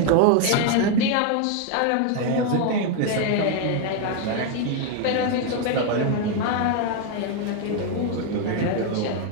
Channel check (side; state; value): both; different; correlation 0.01